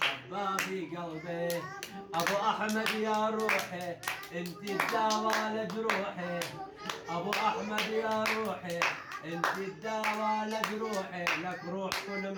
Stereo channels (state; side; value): identical; both; correlation 1.00